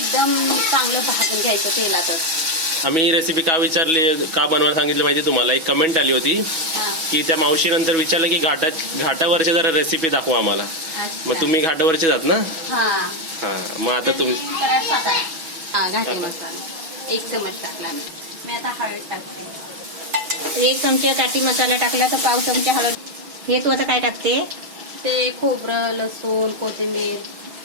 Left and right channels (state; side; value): late; left; 6.1 ms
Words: चांगलं भाजून घ्यायचं तेलातच. आम्ही ही रेसिपी का विचारली, का बनवायला सांगितलं माहिती तुम्हाला? एक कमेंट आली होती की त्या मावशीनंतर विचारलं की घाटावरची जरा रेसिपी दाखवा आम्हाला. मग तुम्ही घाटावरचे जात ना? हा. मग आता तुम्ही घाटी मसाला 1 चमच टाकला मी. आता हळद टाकते. 1 चमचा काठी मसाला टाकला तर पाव चमचा हळद. हे तू आता काय टाकते? ते खोबरं, लसूण, कोथिंबीर